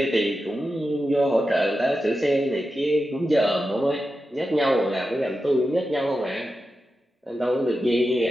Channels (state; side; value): normal; both; correlation 0.91